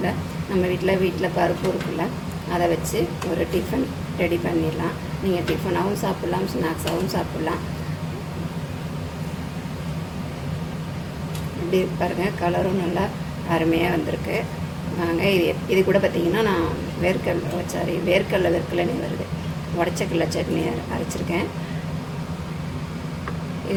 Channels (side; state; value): both; identical; correlation 1.00